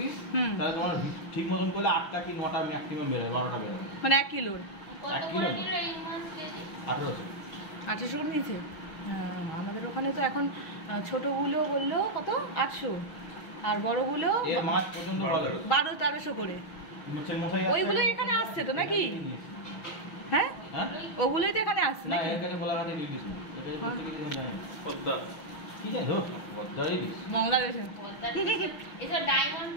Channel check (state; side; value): late; right; 6.3 ms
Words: হুম। তাহলে তোমার ঠিক মতন করলে 8টা কি 9টা ম্যাক্সিমাম বেরোয়, 12টা বেরোয়। মানে 1 কিলোর কত 1 করে কিলো না। নিল এই মাছ কেজি? 1800। 800 করে নিয়েছে। হ্যাঁ, আমাদের ওখানে তো এখন ছোটগুলো বললো কত 800, আর বড়গুলো এর মাছ পর্যন্ত ভালো। 1200-1300 করে। মাছের মশাই ওইগুলো এখানে আসছে তো নাকি? হ্যাঁ হ্যাঁ ওগুলোই তো এখানে আসছে না, নাকি? এর কাছে গোলাঘাটে ইলিশ না, এর কাছে হ্যাঁ। প্রত্যেক ইলিশ জানি পদ্মা, কি জানি হোক পদ্মা ইলিশ। বাংলাদেশে এসব ডায়মন্ড